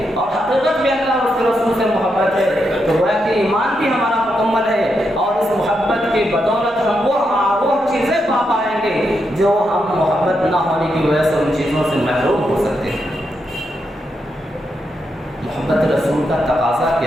اور حقیقت میں اللہ اور اس کے رسول سے محبت ہے تو گویا کہ ایمان بھی ہمارا مکمل ہے، اور اس محبت کی بدولت ہم وہ چیزیں پا پائیں گے جو ہم محبت نہ ہونے کی وجہ سے ان چیزوں سے محروم ہو سکتے ہیں۔ محبت رسول کا تقاضا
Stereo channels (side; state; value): both; normal; correlation 0.83